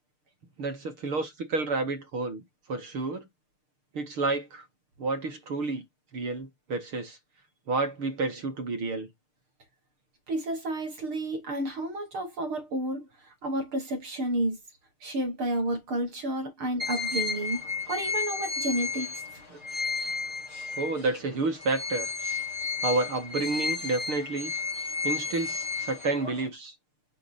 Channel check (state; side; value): late; left; 6.6 ms